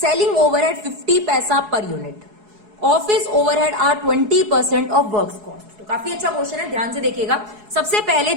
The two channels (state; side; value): late; left; 4.7 ms